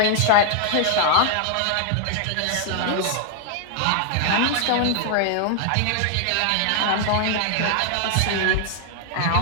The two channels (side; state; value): both; different; correlation 0.00